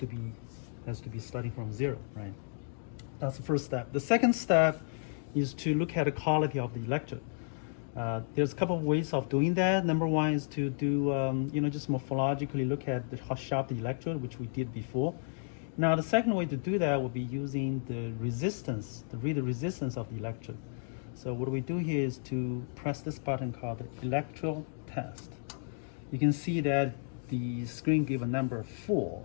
be starting from 0, right? That's the first step. The second step is to look at the quality of the electrode. There's a couple of ways of doing that. Number one is to do, just morphologically look at how sharp the electrode, which we did before. Now, the second way to do that would be using the resistance, to read the resistance of the electrode. So what we do here is to press this button called the electrode test. You can see that the screen gives a number 4,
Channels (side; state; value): right; silent; digital silence